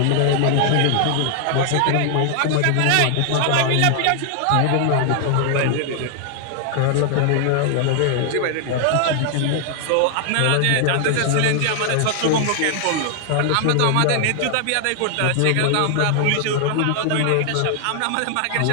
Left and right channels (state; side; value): different; both; correlation 0.00